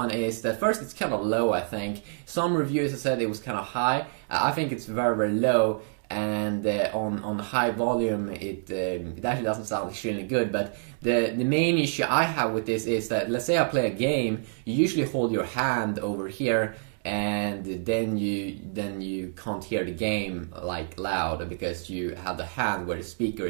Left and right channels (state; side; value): silent; left; digital silence